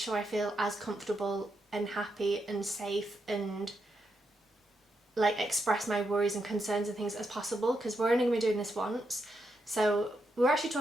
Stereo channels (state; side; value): normal; both; correlation 0.82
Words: I feel as comfortable and happy and safe and like express my worries and concerns and things as possible, because we're only going to be doing this once. So we were actually